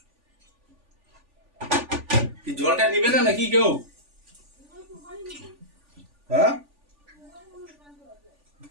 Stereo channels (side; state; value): left; late; 3.5 ms